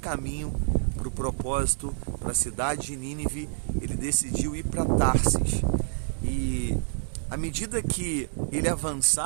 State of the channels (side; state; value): left; silent; 60 dB below the other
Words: para o propósito, para a cidade de Nínive, ele decidiu ir para Tarsis. E à medida que ele